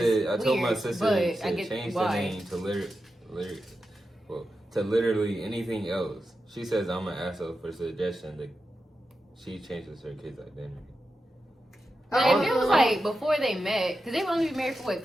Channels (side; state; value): both; normal; correlation 0.90